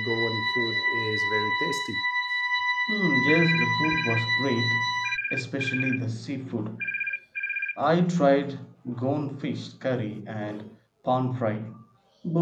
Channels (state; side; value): identical; both; correlation 1.00